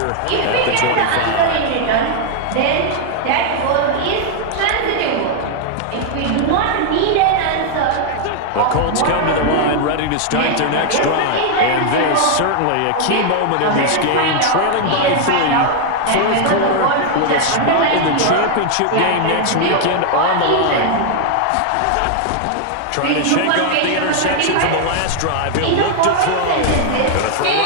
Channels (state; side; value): different; both; correlation 0.00